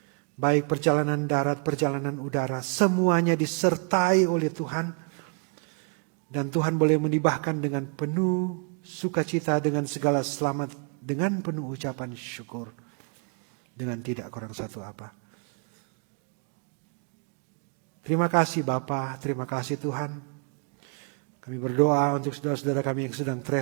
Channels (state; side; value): quieter; left; 40.0 dB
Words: Baik perjalanan darat, perjalanan udara, semuanya disertai oleh Tuhan. Dan Tuhan boleh menibahkan dengan penuh sukacita, dengan segala selamat, dengan penuh ucapan syukur. Dengan tidak kurang satu apa. Terima kasih Bapa, terima kasih Tuhan. Kami berdoa untuk saudara-saudara kami yang sedang